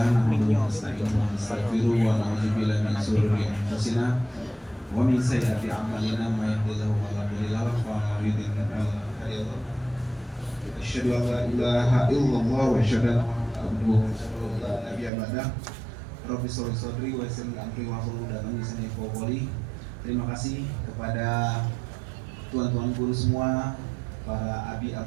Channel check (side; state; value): left; drops out; at 15.1 s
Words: nahmaduhu wa nasta'inuhu wa nastaghfiruh wa na'udzu billahi min shururi anfusina wa min sayyiati a'malina may yahdihillahu fala mudilla lahu wa may yudlil fala hadiya lahu. Asyhadu an la ilaha illallah wa asyhadu anna Muhammadan abduhu wa rasuluhu la nabiyya ba'dah. Rabbi sholli sadri wa yassir li amri wa hlul 'uqdatam min lisani yafqahu qawli. Terima kasih kepada tuan-tuan guru semua, para abi